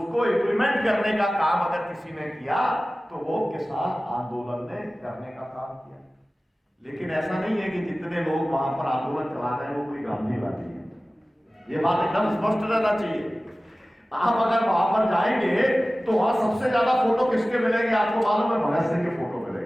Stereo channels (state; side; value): normal; both; correlation 0.97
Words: इम्प्लीमेंट करने का काम अगर किसी ने किया तो वो किसान आंदोलन ने करने का काम किया। लेकिन ऐसा नहीं है कि जितने लोग वहां पर आंदोलन चला रहे हैं वो कोई गांधीवादी है। ये बात एकदम स्पष्ट रहना चाहिए। आप अगर वहां पर जाएंगे तो वहां सबसे ज्यादा फोटो किसके मिलेंगे आपको मालूम है? भगत सिंह के फोटो